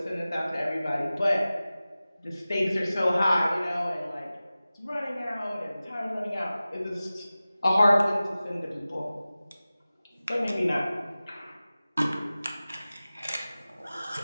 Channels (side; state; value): both; inverted; correlation -0.97